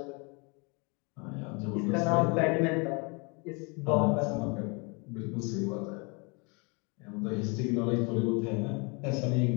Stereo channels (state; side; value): quieter; right; 31.3 dB